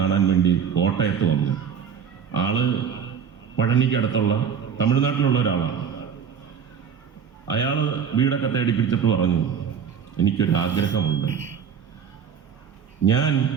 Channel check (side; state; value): left; quieter; 7.4 dB